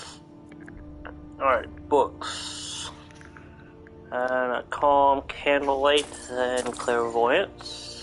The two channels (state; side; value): identical; both; correlation 1.00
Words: Alright, books. Calm, Candlelight, and